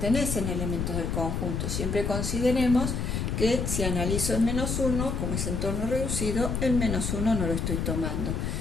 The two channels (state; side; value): noise; left; rumble, 1 dB below the sound